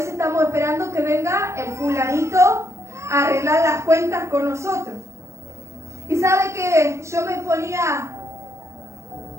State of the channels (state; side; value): late; left; 0.14 ms